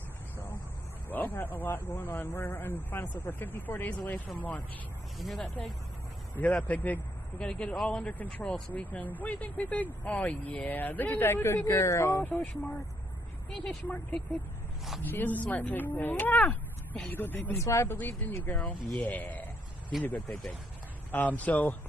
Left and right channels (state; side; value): normal; both; correlation 0.74